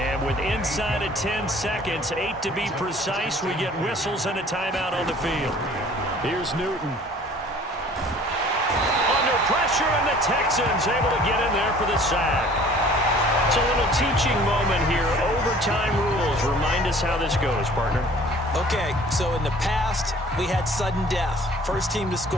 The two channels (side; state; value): both; normal; correlation 0.51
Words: with inside of 10 seconds, 8 to be precise, we get whistles and a timeout on the field. Here's Newton. Pressure, and the Texans able to get in there for the sack. It's a little teaching moment here. Overtime rules. Remind us how this goes, partner. Okay, so in the past, we had sudden death. First team to